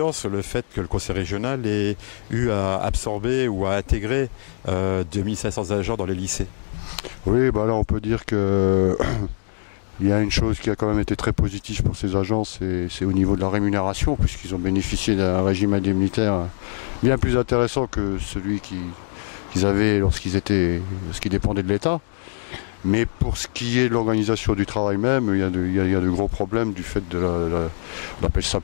sur le fait que le conseil régional ait eu à absorber ou à intégrer 2500 agents dans les lycées? Oui, là on peut dire que il y a une chose qui a quand même été très positive pour ces agents, c'est au niveau de la rémunération, puisqu'ils ont bénéficié d'un régime indemnitaire bien plus intéressant que celui qu'ils avaient lorsqu'ils dépendaient de l'État. Mais pour ce qui est de l'organisation du travail même, il y a de gros problèmes du fait on appelle ça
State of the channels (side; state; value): right; silent; digital silence